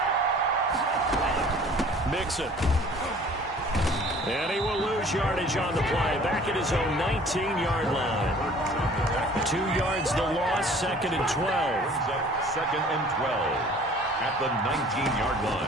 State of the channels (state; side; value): normal; both; correlation 0.50